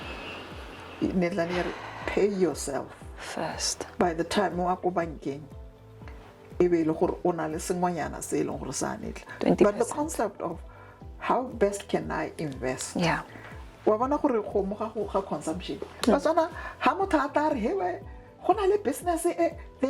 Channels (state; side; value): identical; both; correlation 1.00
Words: Pay yourself first. By the time you go banking, but the concept of how best can I invest? Yeah. Consumption. Business,